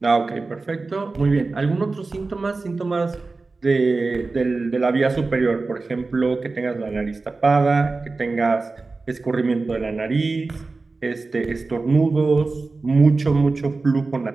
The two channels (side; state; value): left; quieter; 3.7 dB